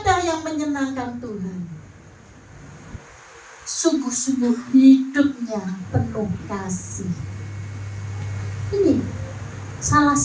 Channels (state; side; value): identical; both; correlation 1.00